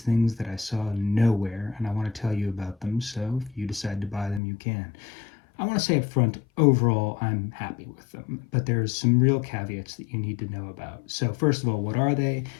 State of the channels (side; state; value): right; drops out; at 4.4 s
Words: that I saw nowhere, and I want to tell you about them. So if you decide to buy them, you can. I want to say up front, overall, I'm happy with them, but there's some real caveats that you need to know about. So first of all, what are they?